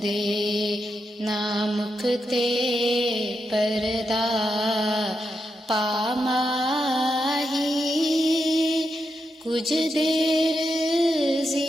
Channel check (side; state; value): both; normal; correlation 0.85